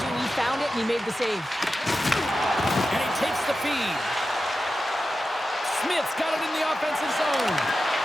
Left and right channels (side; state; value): both; normal; correlation 0.92